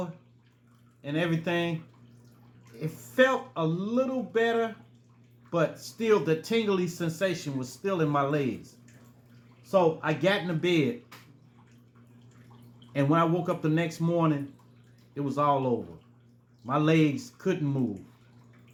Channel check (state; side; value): identical; both; correlation 1.00